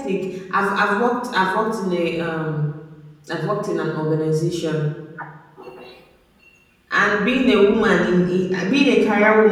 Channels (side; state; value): both; identical; correlation 1.00